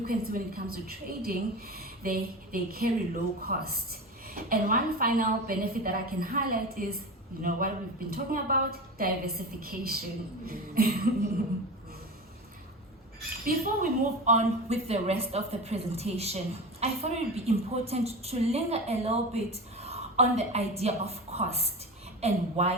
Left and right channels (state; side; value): normal; both; correlation 0.27